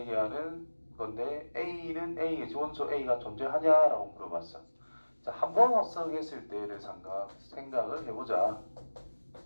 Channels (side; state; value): both; inverted; correlation -1.00